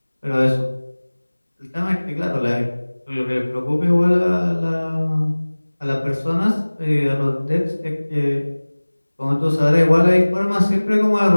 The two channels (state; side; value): inverted; both; correlation -1.00